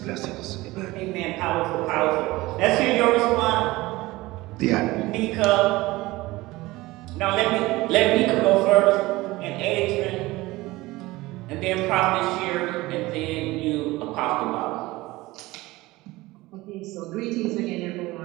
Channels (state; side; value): quieter; left; 19.7 dB